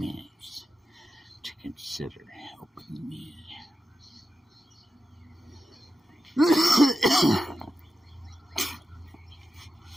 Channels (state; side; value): normal; both; correlation 0.91